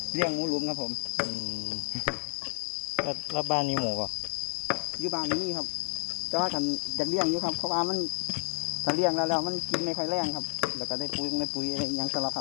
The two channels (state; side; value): silent; right; digital silence